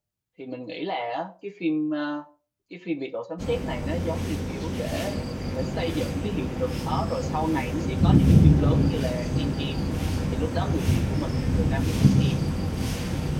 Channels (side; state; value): both; identical; correlation 1.00